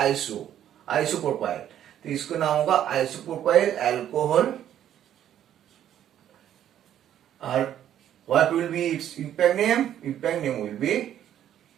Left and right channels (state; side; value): quieter; left; 10.8 dB